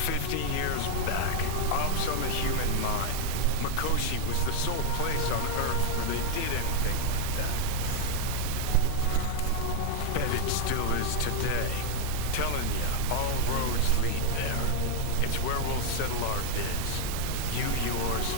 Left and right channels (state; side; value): different; both; correlation -0.01